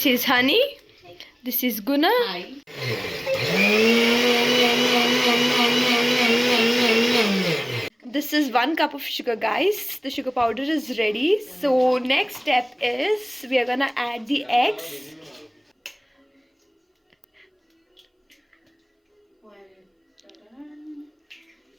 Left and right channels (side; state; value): both; identical; correlation 1.00